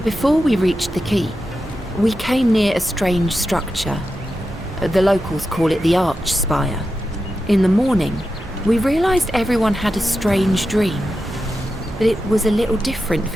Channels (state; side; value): normal; both; correlation 0.90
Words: before we reached the keep, we came near a strange structure. The locals call it the Arch Spire. In the morning, we realized everyone had a strange dream, but it was a little different